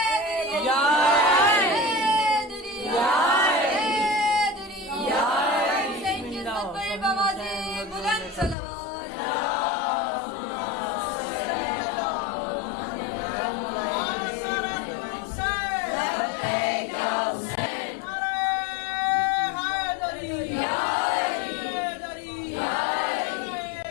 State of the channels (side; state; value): right; drops out; at 8.6 s